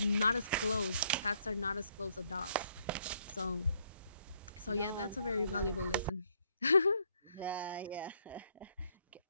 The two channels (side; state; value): both; inverted; correlation -0.70